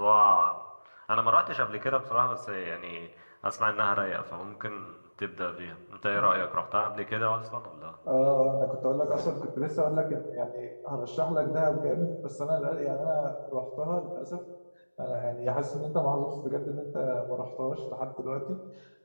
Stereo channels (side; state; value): both; inverted; correlation -1.00